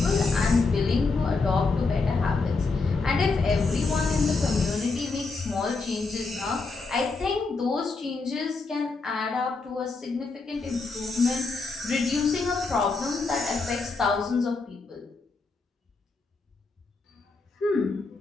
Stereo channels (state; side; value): quieter; right; 4.0 dB